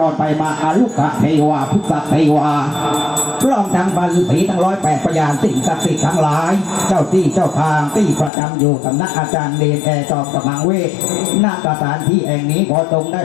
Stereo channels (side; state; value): right; drops out; at 8.3 s